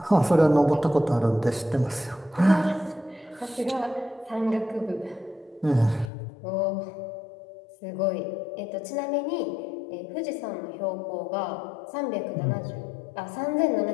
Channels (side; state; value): right; drops out; at 6.1 s